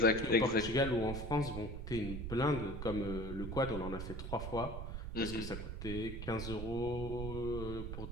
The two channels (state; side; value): noise; right; rumble, 6 dB below the sound